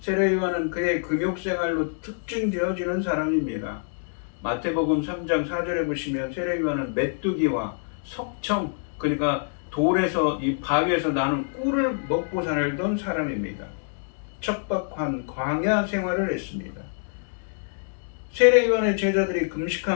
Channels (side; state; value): right; silent; digital silence